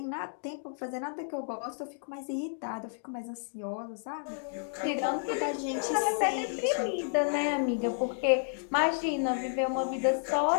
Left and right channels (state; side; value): silent; right; digital silence